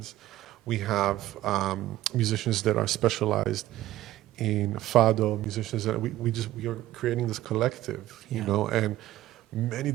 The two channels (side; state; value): left; quieter; 14.9 dB